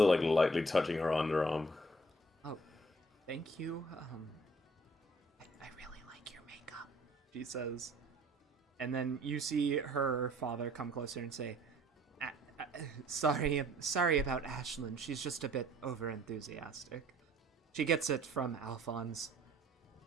lightly touching her underarm. Oh, Thank you. I really like your makeup, she says. And then you see her father come closer and say, sorry about Ashlyn. She's just a bit overenthusiastic. She gets it from Alphonse.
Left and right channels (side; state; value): both; normal; correlation 0.57